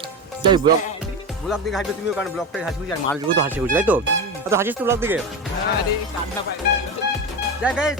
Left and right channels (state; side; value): normal; both; correlation 0.21